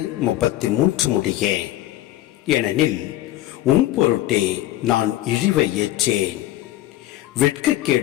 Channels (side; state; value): right; quieter; 14.8 dB